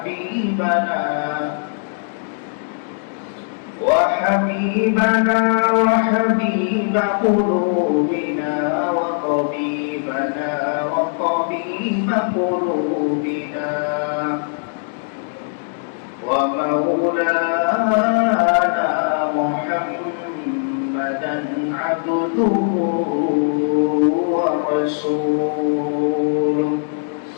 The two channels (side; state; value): right; silent; digital silence